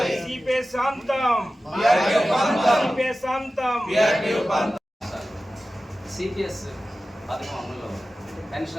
సిపిఎస్ అంతం సిపిఎస్ అంతం సిపిఎస్ పథకం అమలులో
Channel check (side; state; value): both; normal; correlation 0.95